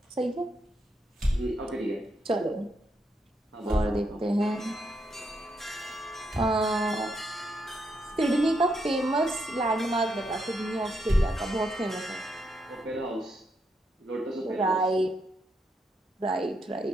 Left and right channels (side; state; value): both; normal; correlation 0.79